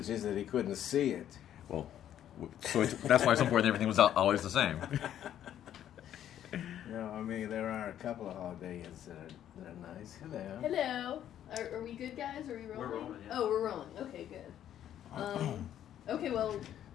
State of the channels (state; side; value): quieter; right; 10.8 dB